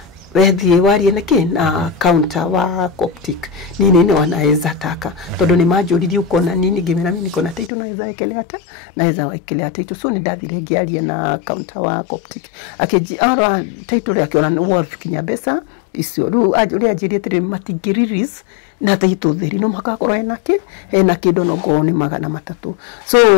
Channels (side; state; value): right; drops out; at 7.7 s